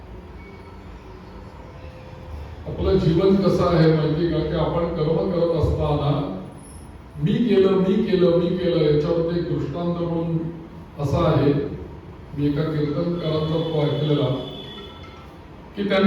आपलं जीवन कसं आहे माहिती का, की आपण कर्म करत असताना मी केलं मी केलं मी केलं याच्यावर एक दृष्टांत म्हणून असा आहे. मी एका कीर्तनकारांचा तो ऐकलेला की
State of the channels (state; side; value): identical; both; correlation 1.00